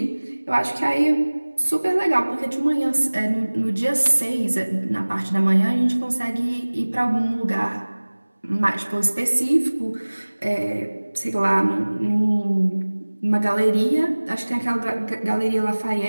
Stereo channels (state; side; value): inverted; both; correlation -1.00